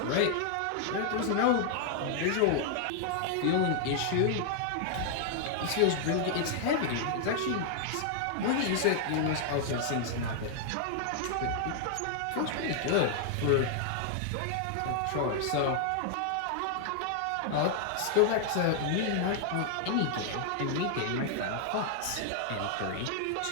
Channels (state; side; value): different; both; correlation 0.00